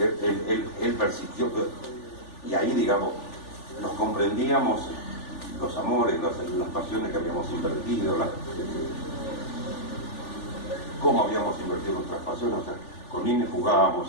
persistió, y ahí, digamos, nos comprendíamos los amores, las pasiones que habíamos invertido, cómo habíamos invertido nuestras pasiones. O sea, con Nine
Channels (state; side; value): late; right; 3.4 ms